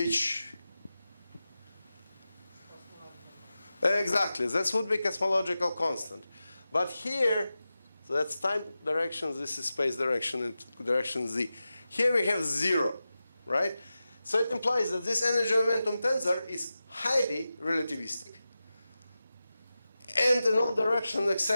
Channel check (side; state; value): both; inverted; correlation -0.93